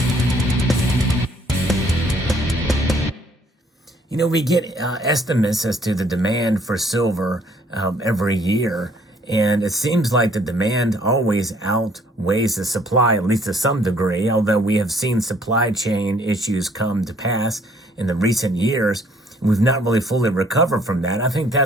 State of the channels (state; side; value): normal; both; correlation 0.62